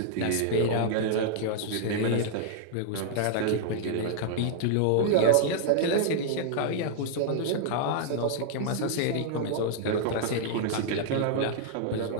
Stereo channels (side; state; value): both; different; correlation -0.01